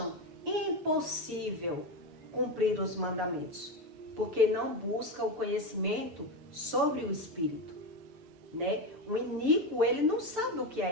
impossível cumprir os mandamentos, porque não buscam o conhecimento sobre o Espírito, né? O iníquo, ele não sabe o que é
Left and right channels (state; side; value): late; left; 6.8 ms